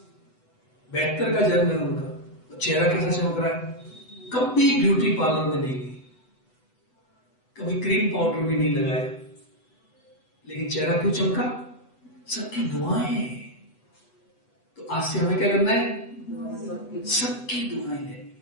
72 का जन्म है उनका। तो चेहरा कैसा चमक रहा है? कभी ब्यूटी पार्लर में नहीं गई, कभी क्रीम पाउडर भी नहीं लगाया, लेकिन चेहरा क्यों चमका? सबकी दुआएं। तो आज से हमें क्या करना है? सबकी दुआएं लेनी है,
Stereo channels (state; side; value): late; right; 8.1 ms